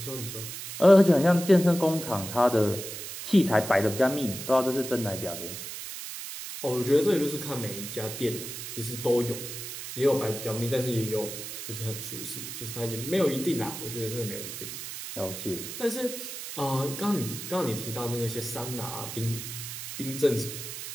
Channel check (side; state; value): right; noise; hiss, 8 dB below the sound